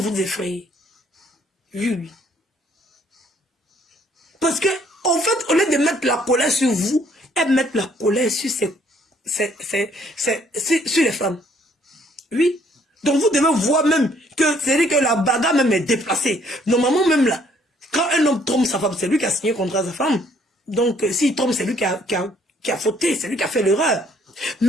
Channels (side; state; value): both; normal; correlation 0.64